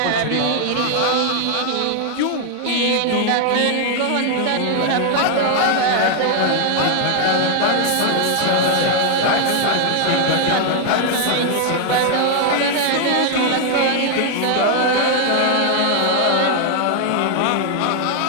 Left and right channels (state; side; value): different; both; correlation 0.00